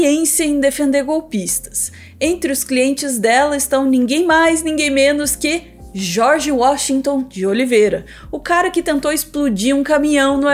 em defender golpistas. Entre os clientes dela estão ninguém mais, ninguém menos que George Washington de Oliveira, o cara que tentou explodir um caminhão no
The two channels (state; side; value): identical; both; correlation 1.00